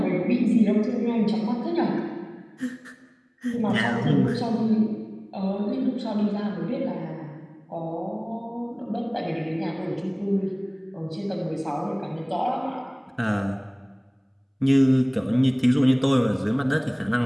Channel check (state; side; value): identical; both; correlation 1.00